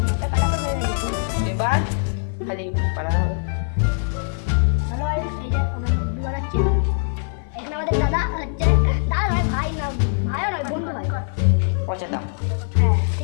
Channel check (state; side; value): silent; right; 57 dB below the other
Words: এবার খালি বানানো হবে। আমাদের দাদা হচ্ছে, দাদা নয় ভাই, না ভাইও নয়, বন্ধু ভাই পচাটা। হ্যাঁ